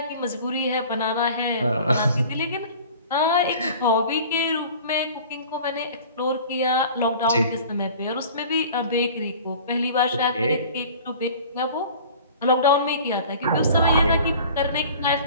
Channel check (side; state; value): both; inverted; correlation -0.44